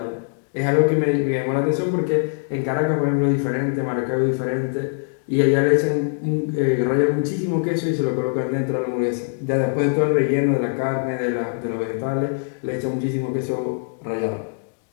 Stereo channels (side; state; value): right; silent; digital silence